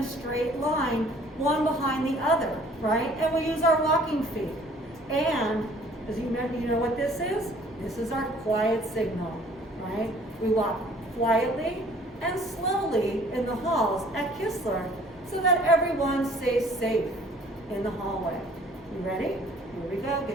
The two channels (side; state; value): both; normal; correlation 0.55